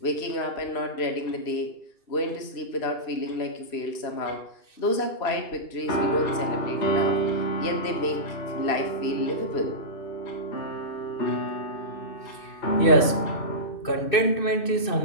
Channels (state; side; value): late; right; 2.6 ms